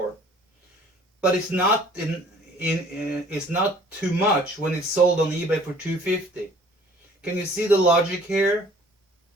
But it's not it's not too much when it's sold on eBay for $250. Can you see the logic here?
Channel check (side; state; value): both; normal; correlation 0.53